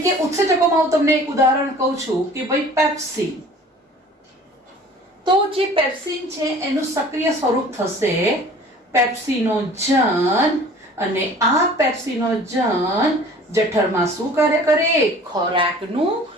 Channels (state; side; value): normal; both; correlation 0.47